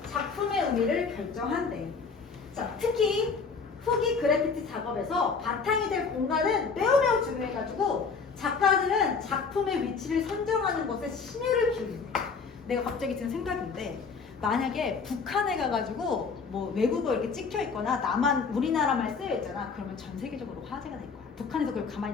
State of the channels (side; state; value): right; quieter; 5.1 dB